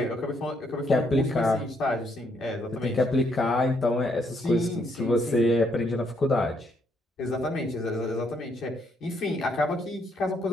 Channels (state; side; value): normal; both; correlation 0.73